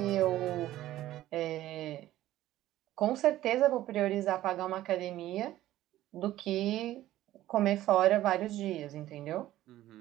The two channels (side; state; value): left; quieter; 14.5 dB